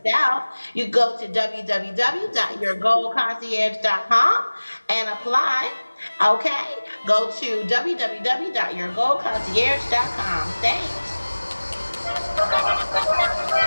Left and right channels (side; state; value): both; inverted; correlation -1.00